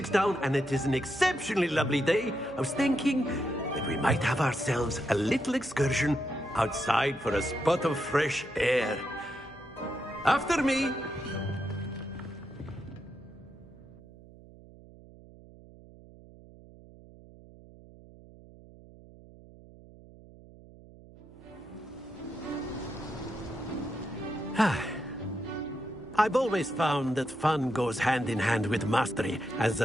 down, and it is an exceptionally lovely day, I was thinking that we might have ourselves a little excursion outside for a spot of fresh air. After me. I've always found that fun goes hand in hand with mastery, as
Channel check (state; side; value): noise; right; hum, 21 dB below the sound